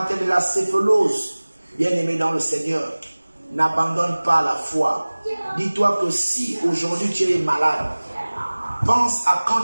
de la céphalose, bien-aimé dans le Seigneur, n'abandonne pas la foi. Dis-toi que si aujourd'hui tu es malade, pense à quand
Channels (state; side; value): inverted; both; correlation -1.00